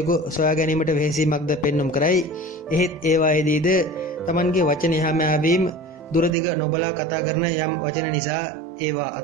සොයා ගැනීමට වෙහෙසීමක්ද පෙන්නුම් කරයි. එහෙත් ඒවායේදීද තමන්ගේ වචන එහා මෙහා වීම දුරදිග නොබලා කතා කරන යම් වචන නිසා ඒවා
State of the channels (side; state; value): left; drops out; at 6.3 s